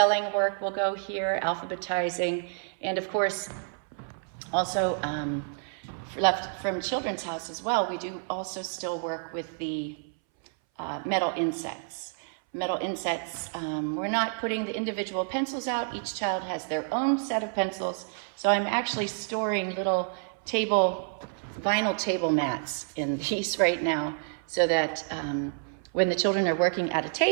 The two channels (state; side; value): silent; left; 59 dB below the other